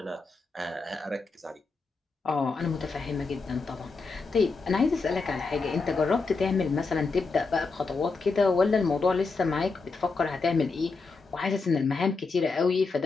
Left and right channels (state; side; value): quieter; right; 4.2 dB